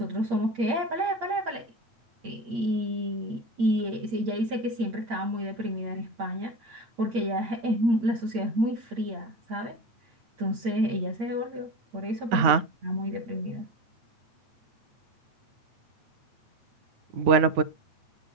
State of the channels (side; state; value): left; late; 8.6 ms